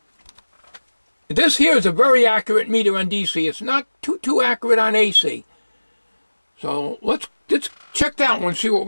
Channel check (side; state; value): both; inverted; correlation -1.00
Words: This here is a very accurate meter on DC. It's not too accurate on AC. So let's check that one, see what